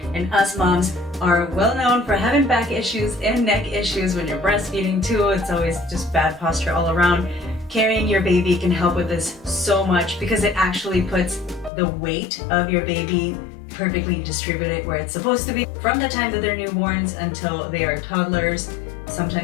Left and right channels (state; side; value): drops out; right; at 11.7 s